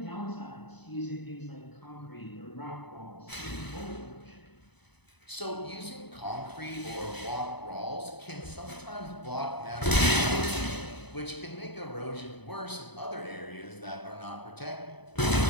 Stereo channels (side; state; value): right; late; 0.99 ms